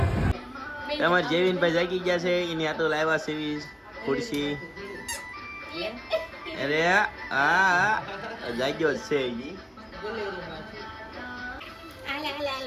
તમારે જેવીનભાઈ જાગી ગયા છે. એની આટો લાવ્યા સેવી ખુરશી. અરે હા જાગ્યો છે.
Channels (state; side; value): identical; both; correlation 1.00